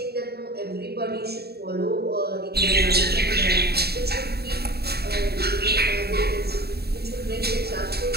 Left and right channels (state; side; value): late; left; 0.46 ms